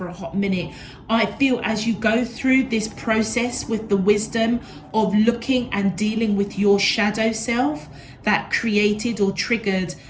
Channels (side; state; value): both; identical; correlation 1.00